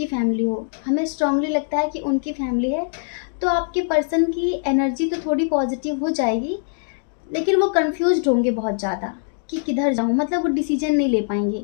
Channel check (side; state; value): right; silent; digital silence